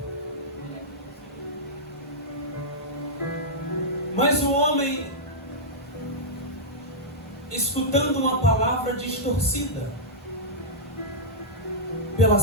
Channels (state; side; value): normal; both; correlation -0.10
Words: Mas o homem, escutando uma palavra distorcida pela